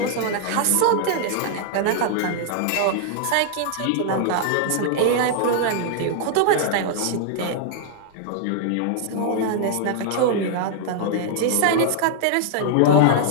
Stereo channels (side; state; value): both; different; correlation -0.01